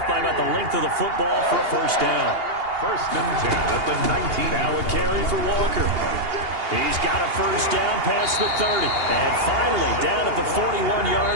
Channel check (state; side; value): late; left; 2.8 ms